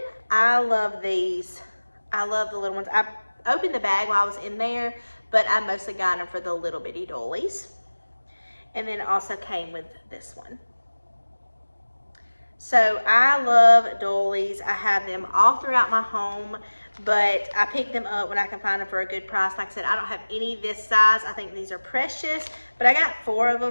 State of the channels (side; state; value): both; inverted; correlation -1.00